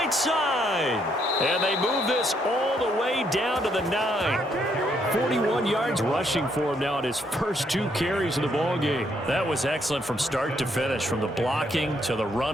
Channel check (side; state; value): both; normal; correlation 0.72